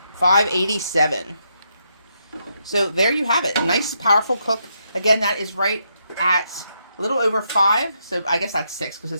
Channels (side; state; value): both; inverted; correlation -0.79